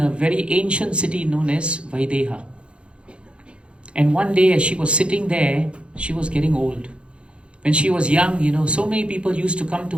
a very ancient city known as Vaideha. And one day as she was sitting there, she was getting old. When she was young, so many people used to come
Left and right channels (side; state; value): left; late; 0.057 ms